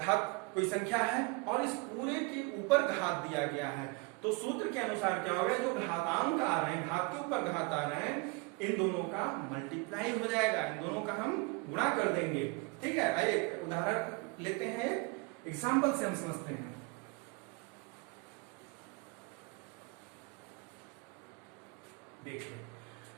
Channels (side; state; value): left; quieter; 27.8 dB